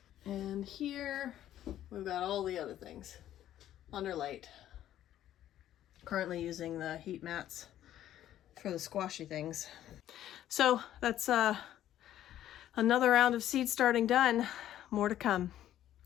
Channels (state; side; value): quieter; right; 12.1 dB